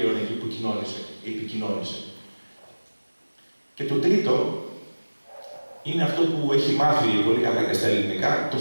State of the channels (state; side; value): inverted; both; correlation -1.00